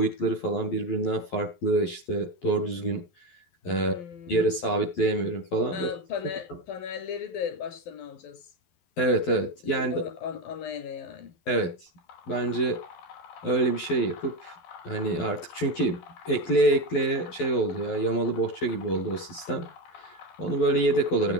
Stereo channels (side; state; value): right; late; 12 ms